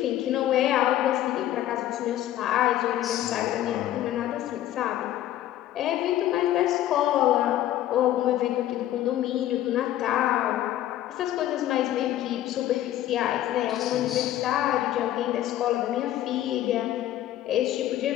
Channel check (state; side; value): quieter; right; 13.1 dB